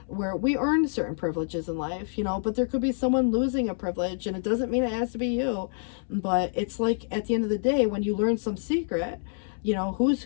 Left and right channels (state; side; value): silent; right; 60 dB below the other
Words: where we earn certain privileges in life, you know, but there could be someone losing a privilege, and it doesn't mean it has to be you. But it's like, at the end of the day, when you learn some secret, you know, who's